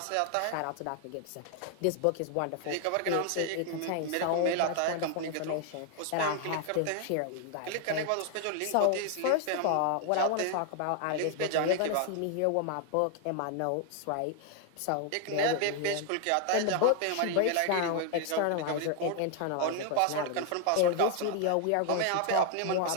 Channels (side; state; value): both; different; correlation 0.00